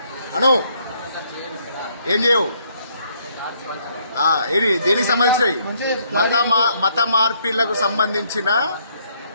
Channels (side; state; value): both; inverted; correlation -0.69